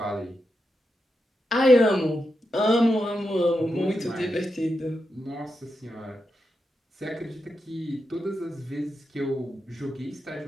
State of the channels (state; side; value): normal; both; correlation 0.87